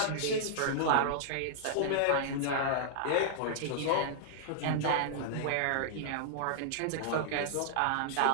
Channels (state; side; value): different; both; correlation -0.01